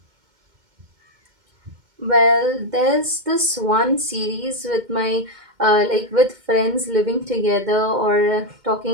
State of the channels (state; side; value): late; left; 2.1 ms